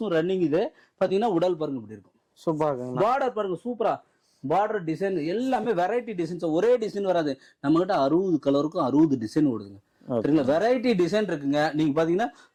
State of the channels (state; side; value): identical; both; correlation 1.00